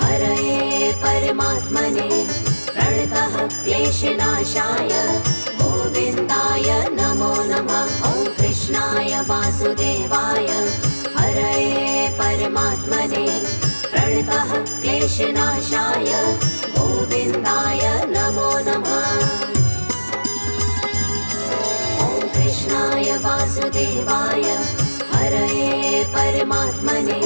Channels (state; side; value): inverted; both; correlation -1.00